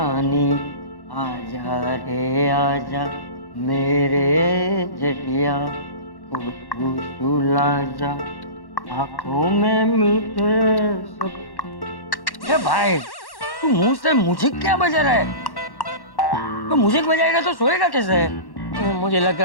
आजा रे आजा मेरे जटिया, तू सुला जा आंखों में मीठे सब। ए भाई, तू मुंह से म्यूजिक क्या बजा रहा है? तो म्यूजिक बजाएगा तो सोएगा कैसे? मुझे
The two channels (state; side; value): late; right; 1.1 ms